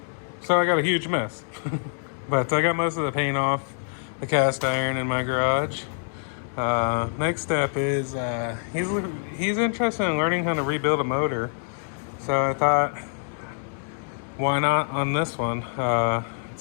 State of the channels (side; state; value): right; silent; 61 dB below the other